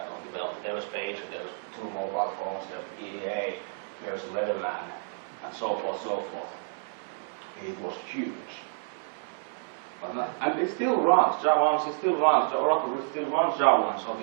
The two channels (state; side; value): silent; left; 58 dB below the other